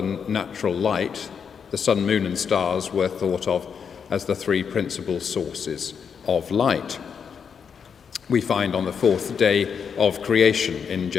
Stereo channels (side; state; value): right; quieter; 6.8 dB